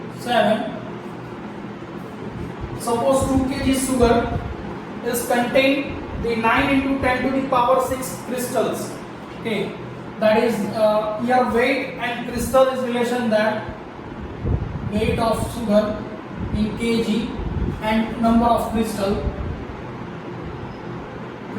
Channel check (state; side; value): identical; both; correlation 1.00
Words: 7. Suppose 2 kg sugar is contained the 9 into 10 to the power 6 crystals. Okay, that is here weight and crystal is relation, that weight of sugar in kg and number of crystal